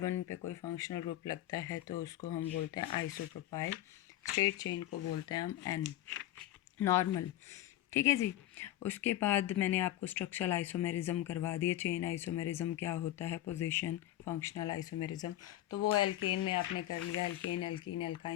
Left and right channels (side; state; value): right; quieter; 13.9 dB